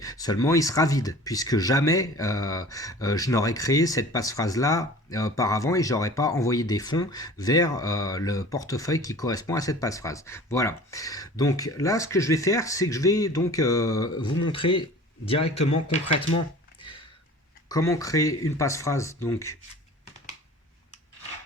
Seulement il sera vide, puisque jamais je n'aurais créé cette passe-phrase là auparavant et j'aurais pas envoyé des fonds vers le portefeuille qui correspond à cette passe-phrase. Voilà. Donc là, ce que je vais faire, c'est que je vais donc vous montrer directement, concrètement, comment créer une passe-phrase donc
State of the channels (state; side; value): normal; both; correlation 0.43